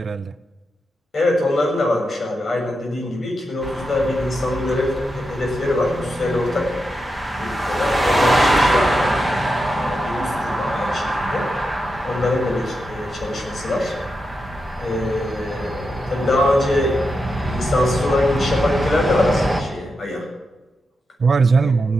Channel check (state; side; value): normal; both; correlation 0.87